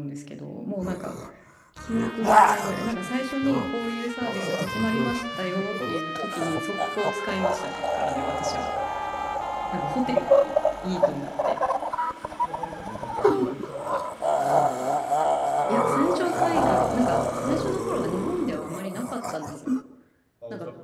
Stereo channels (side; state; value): both; identical; correlation 1.00